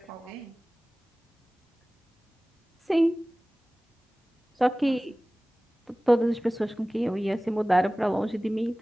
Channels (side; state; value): both; normal; correlation 0.98